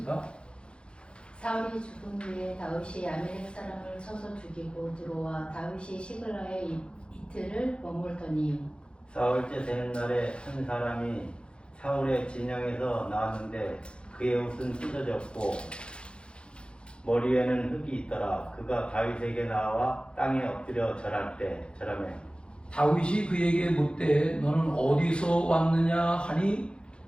사울이 죽은 후에 다윗이 아멜렉 사람을 쳐서 죽이고 들어와 다윗이 시글라에 이틀을 머물더니 사흘째 되는 날에 한 사람이 사울의 진영에서 나왔는데 그의 옷은 찢어졌고 머리에는 흙이 있더라. 그가 다윗에게 나와 땅에 엎드려 절할 때 절하매 다윗이 그에게 묻되 너는 어디서 왔느냐 하니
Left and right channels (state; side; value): late; right; 0.055 ms